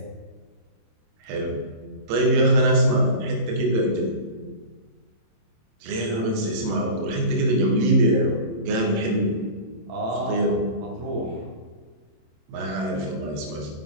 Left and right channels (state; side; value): late; left; 27 ms